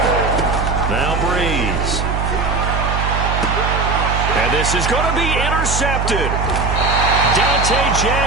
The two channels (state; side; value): noise; right; hum, 1 dB below the sound